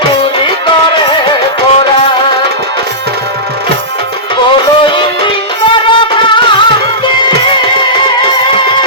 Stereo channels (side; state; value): both; normal; correlation -0.17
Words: চুরি করে পড়া বলো ইন্দ্র কান্তে